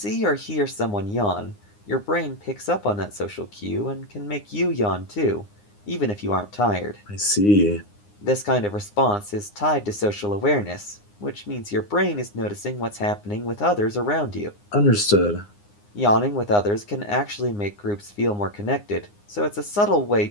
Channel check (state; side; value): late; right; 9.7 ms